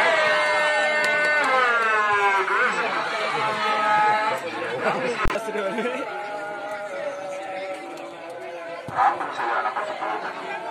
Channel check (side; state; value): both; identical; correlation 1.00